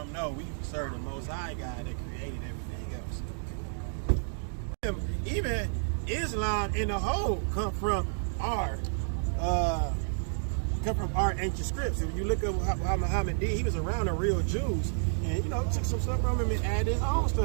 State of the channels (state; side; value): silent; left; digital silence